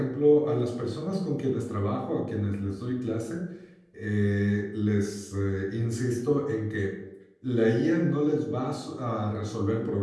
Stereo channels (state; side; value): identical; both; correlation 1.00